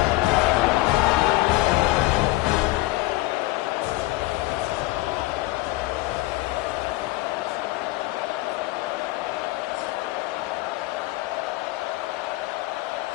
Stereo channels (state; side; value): quieter; right; 19.3 dB